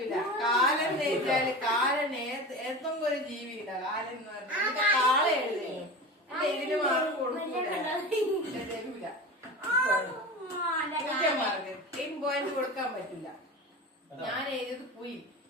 കാലൻ എഴുതിയാല് കാലൻ ഏതെങ്കിലും ഒരു ജീവിയില്ല. കാലൻ എന്ന് പറഞ്ഞാൽ കാള എഴുതി. ഇതിന് മാർക്ക് കൊടുക്കൂല, തരൂല. മാർക്ക് 10 പോയിന്റ് കൊടുക്കാൻ പറ്റില്ല. ഞാൻ എഴുതിയത് പുയി.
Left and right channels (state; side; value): normal; both; correlation 0.29